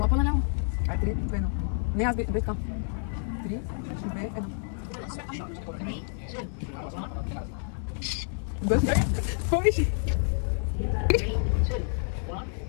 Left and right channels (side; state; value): right; silent; 59 dB below the other